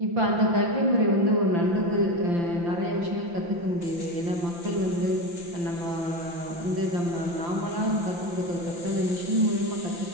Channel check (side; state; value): left; late; 5.8 ms